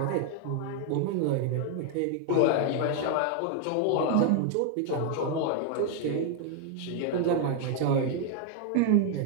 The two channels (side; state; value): both; different; correlation 0.00